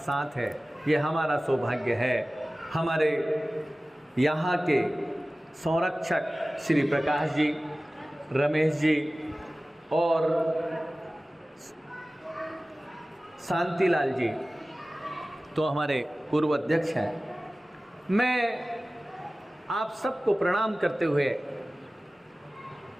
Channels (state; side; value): normal; both; correlation 0.97